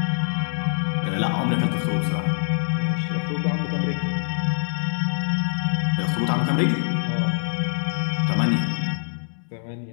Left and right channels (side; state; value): right; silent; digital silence